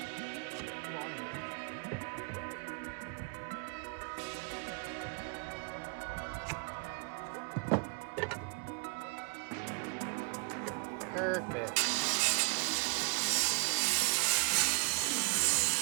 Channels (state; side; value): quieter; left; 34.9 dB